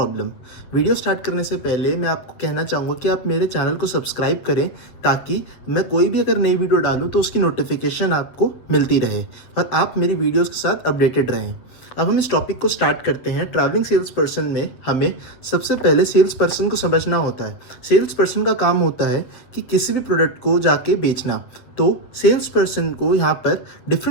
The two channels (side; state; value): right; late; 8.1 ms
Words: Video start करने से पहले मैं आपको कहना चाहूँगा कि आप मेरे चैनल को सब्सक्राइब करें ताकि मैं कोई भी अगर नई वीडियो डालूँ तो उसकी नोटिफिकेशन आपको मिलती रहे और आप मेरी वीडियोज़ के साथ अपडेटेड रहें। अब हम इस टॉपिक को स्टार्ट करते हैं। ट्रैवलिंग सेल्स पर्सन में हमें सबसे पहले सेल्स पर्सन को समझना होता है। सेल्स पर्सन का काम होता है कि किसी भी प्रोडक्ट को जाके बेचना। तो सेल्स पर्सन को यहाँ पर